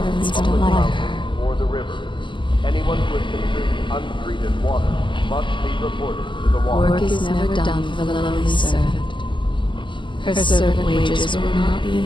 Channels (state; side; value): late; right; 0.24 ms